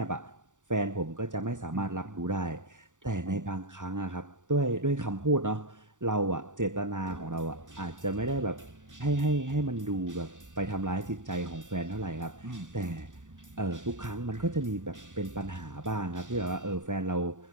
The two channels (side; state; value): left; late; 0.86 ms